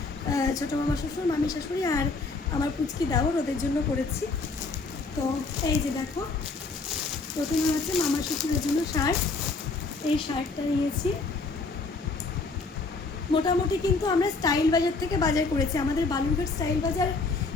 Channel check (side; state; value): right; quieter; 3.9 dB